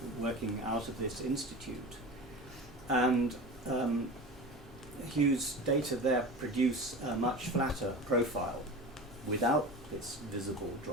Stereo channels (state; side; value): normal; both; correlation 0.32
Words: working out of this institute. And Hugh's data there produce a much flatter profile without this visible